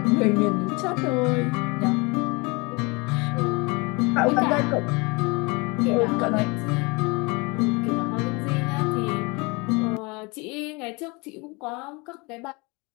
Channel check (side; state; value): right; quieter; 27.7 dB